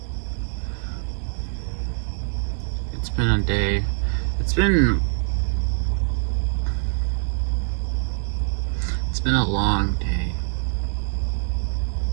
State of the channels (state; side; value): silent; left; 63 dB below the other